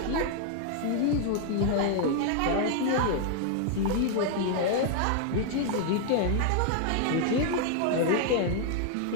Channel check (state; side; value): different; both; correlation 0.00